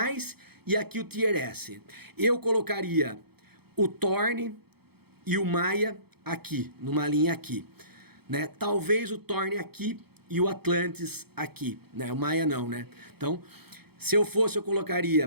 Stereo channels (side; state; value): left; late; 0.96 ms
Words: e aqui o tier S. Eu colocaria o Thorne e o Maya aqui, numa linha aqui, né? Talvez o Thorne aqui e o Atlantis aqui, né? O Maya não, né? Então, se eu fosse, eu colocaria